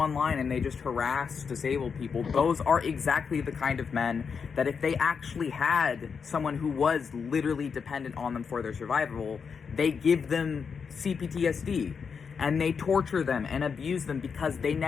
and they just harass disabled people. Those are exactly the kind of men that if they actually had someone who was literally dependent on them for their survival, they give them CPTSD and they torture them and abuse them because they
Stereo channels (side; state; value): right; quieter; 6.0 dB